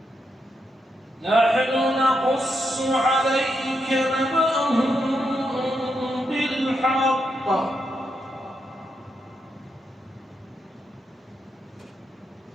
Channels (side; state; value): both; normal; correlation 0.82